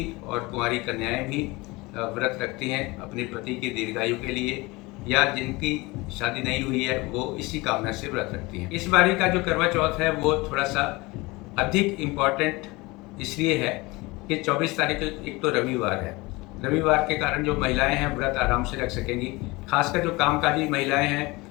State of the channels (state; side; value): quieter; right; 23.1 dB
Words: और कुंवारी कन्याएं भी व्रत रखती हैं अपने पति की दीर्घायु के लिए, या जिनकी शादी नहीं हुई है वो इसी कामना से व्रत रखती हैं। इस बारी का जो करवा चौथ है वो थोड़ा सा अधिक इम्पॉर्टेंट इसलिए है कि 24 तारीख को एक तो रविवार है। रविवार के कारण जो महिलाएं हैं व्रत आराम से रख सकेंगी। खासकर जो कामकाजी महिलाएं